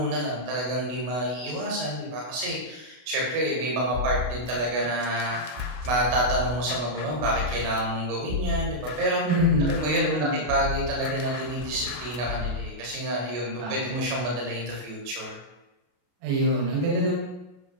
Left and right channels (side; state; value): left; late; 32 ms